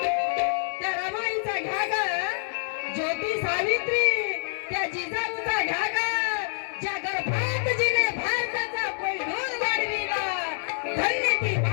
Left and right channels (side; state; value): right; silent; 60 dB below the other